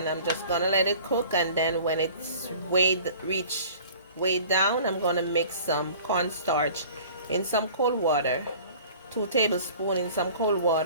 I'm just gonna let it cook. And then when it's way down, I'm gonna mix some cornstarch in some cold water, 2 tablespoons in some cold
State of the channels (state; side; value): inverted; both; correlation -0.47